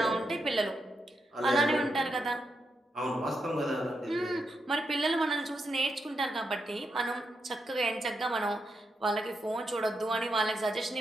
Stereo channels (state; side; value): normal; both; correlation 0.83